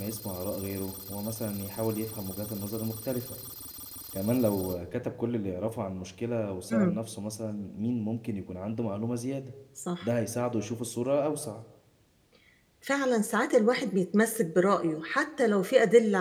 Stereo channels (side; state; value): both; identical; correlation 1.00